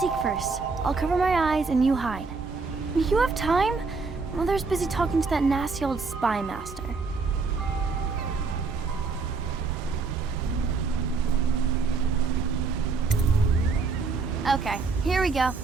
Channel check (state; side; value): quieter; left; 4.5 dB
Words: first. I'll cover my eyes and you hide. You have time? Mother's busy talking to that nasty old spy master. Okay, here we go.